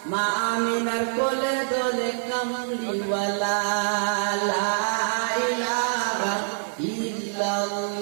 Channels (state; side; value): silent; left; 56 dB below the other